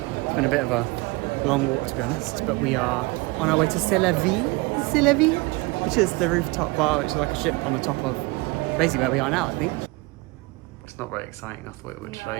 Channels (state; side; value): quieter; left; 24.5 dB